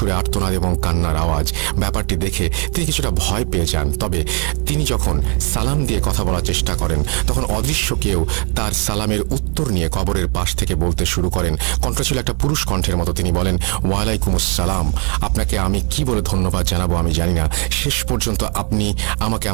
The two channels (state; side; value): quieter; left; 35.6 dB